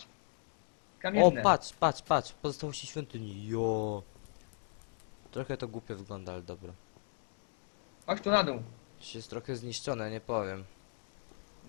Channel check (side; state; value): right; silent; 53 dB below the other